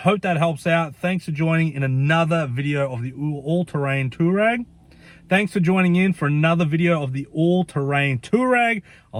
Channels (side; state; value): both; identical; correlation 1.00